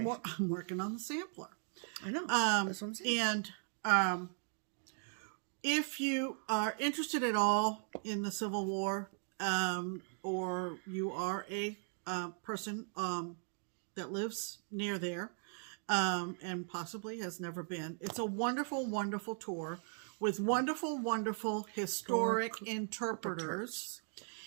working on the sampler. I know. That's what I'm saying. And if you are interested at all in the Civil War, or you are a person that lives near there, and possibly has never been, it's a wonderful, wonderful tour with wonderful, wonderful historic interpreters.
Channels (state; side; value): silent; left; 52 dB below the other